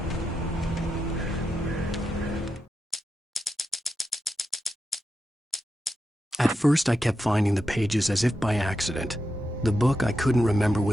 At first, I kept finding the pages as if by accident. The book I couldn't remember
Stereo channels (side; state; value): both; normal; correlation 0.87